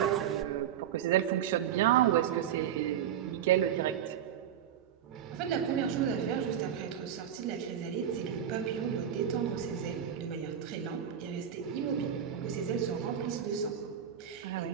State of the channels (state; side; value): quieter; left; 9.5 dB